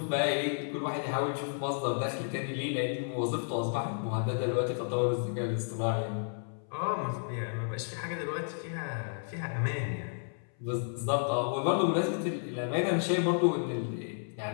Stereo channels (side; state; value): right; silent; 56 dB below the other